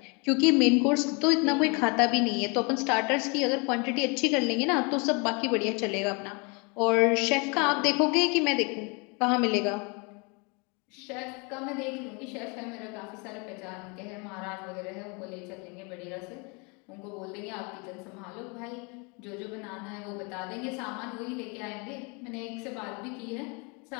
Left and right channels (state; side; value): quieter; right; 31.4 dB